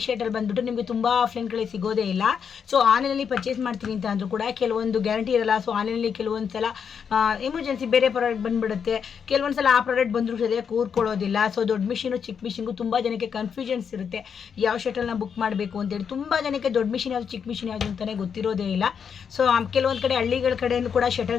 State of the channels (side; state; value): right; quieter; 7.0 dB